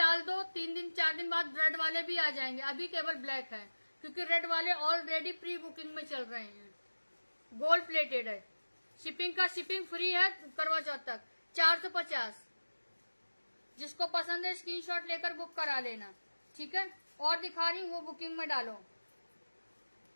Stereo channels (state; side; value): inverted; both; correlation -1.00